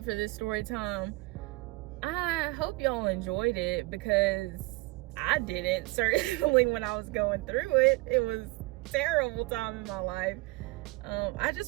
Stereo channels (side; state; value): left; quieter; 23.1 dB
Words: for this story time. I hope y'all enjoyed it, because I didn't, certainly, when I was going through it. It was a terrible time in my life. I